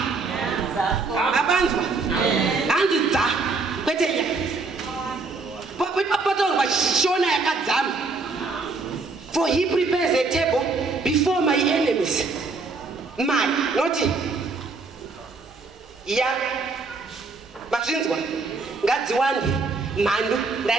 Abanzwa hanzi dza kwete ya papatorwa shona yakadzama. For he prepares a table before my enemies. My, not ya mazvinzwa ngadziwande mhandu.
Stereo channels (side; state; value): left; quieter; 4.0 dB